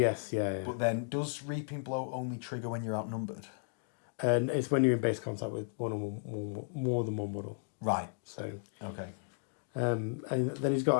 yeah. But then, does Reaping Blow only trigger when you're outnumbered? And it's when you're in base contact with more than one model. Right. So. Okay. And then he's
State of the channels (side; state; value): right; silent; digital silence